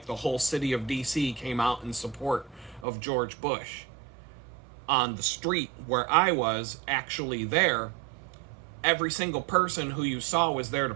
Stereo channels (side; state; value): left; drops out; at 2.9 s